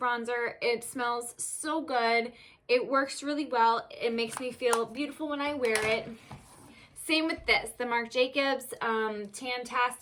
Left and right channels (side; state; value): both; identical; correlation 1.00